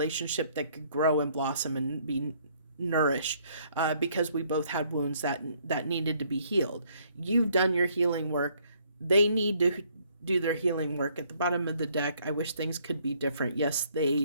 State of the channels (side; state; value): both; inverted; correlation -0.65